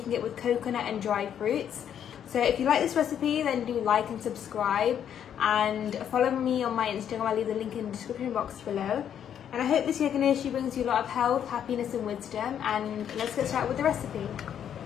it with coconut and dried fruits. So if you like this recipe, then do like and subscribe, and follow me on my Instagram. I'll leave the link in the description box below. And I hope this year Ganeshji brings you a lot of health, happiness and wisdom. And let's get started with the recipe.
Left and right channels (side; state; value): right; quieter; 9.2 dB